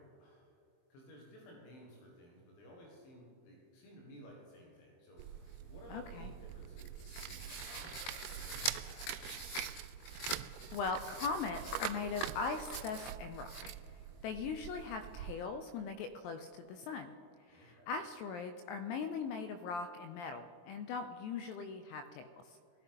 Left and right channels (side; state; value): right; late; 23 ms